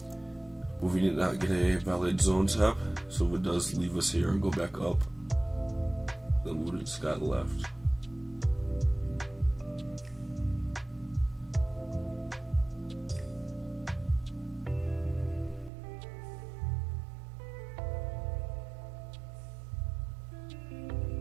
we did not get a valid zone tap, so if it does leave us here and go back up, then we just got left.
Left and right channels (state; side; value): drops out; left; at 15.7 s